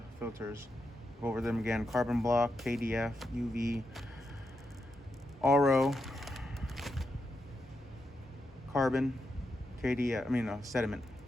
filters, go over them again: carbon block, KDF, UV, RO, carbon, KDF, sediment.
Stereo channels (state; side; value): normal; both; correlation 0.85